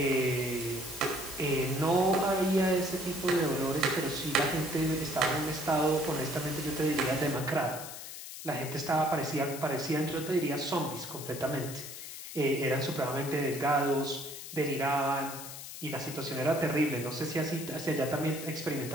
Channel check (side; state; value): left; noise; hiss, 10 dB below the sound